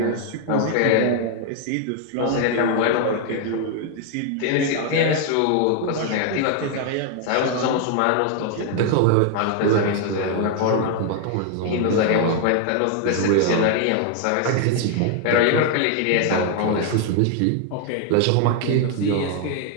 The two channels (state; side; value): different; both; correlation 0.00